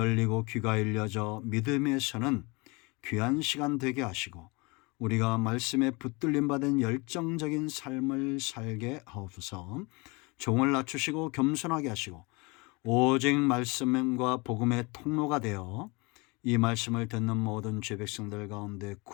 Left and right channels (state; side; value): quieter; right; 27.2 dB